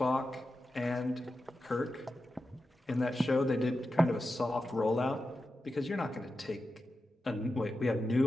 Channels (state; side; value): normal; both; correlation 0.91